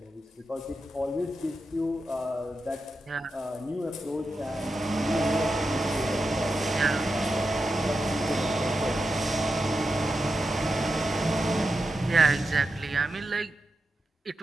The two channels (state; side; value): normal; both; correlation 0.89